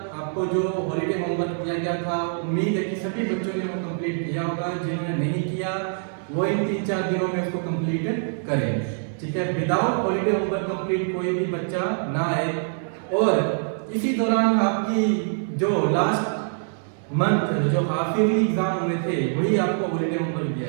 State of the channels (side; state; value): left; silent; 62 dB below the other